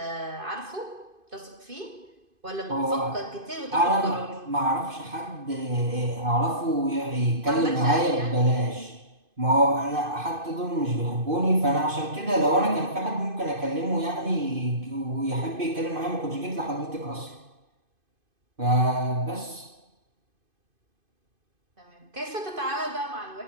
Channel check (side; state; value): left; late; 2.5 ms